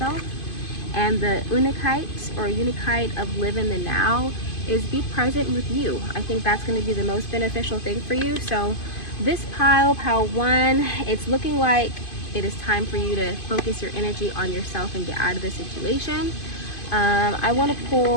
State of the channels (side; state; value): right; late; 2.5 ms